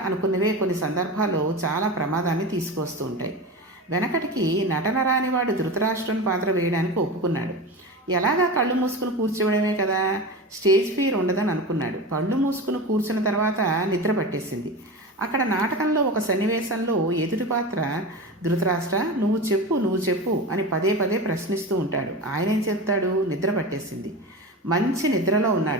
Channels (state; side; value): normal; both; correlation 0.27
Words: అనుకున్నవే కొన్ని సందర్భాల్లో చాలా ప్రమాదాన్ని తీసుకొస్తూ ఉంటాయి. వెనకటికి నటన రానివాడు ధృతరాష్ట్రుని పాత్ర వేయడానికి ఒప్పుకున్నాడు. ఎలాగా కళ్ళు మూసుకుని కూర్చోవడమే కదా, స్టేజ్ ఫియర్ ఉండదని అనుకున్నాడు. కళ్ళు మూసుకుని కూర్చున్న తర్వాత నిద్ర పట్టేసింది. అక్కడ నాటకంలో ఒక సన్నివేశంలో ఎదుటి పాత్ర ధృతరాష్ట్ర నువ్వు చెప్పు అని పదే పదే ప్రశ్నిస్తూ ఉంటాడు. ఆయన ఏం చెప్తాడు? నిద్ర పట్టేసింది, మంచి నిద్రలో